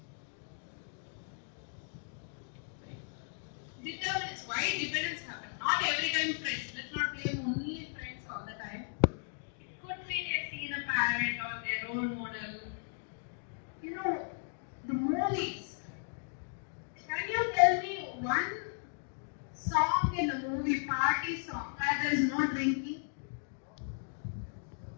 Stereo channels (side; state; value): right; silent; digital silence